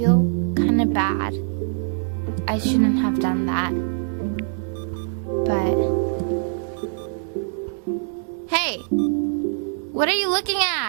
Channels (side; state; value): left; silent; 63 dB below the other